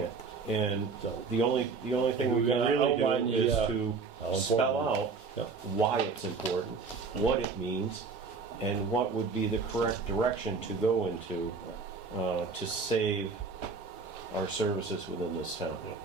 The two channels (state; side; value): quieter; left; 4.6 dB